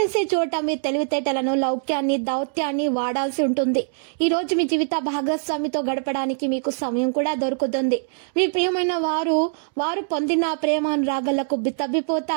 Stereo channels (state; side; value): silent; left; 63 dB below the other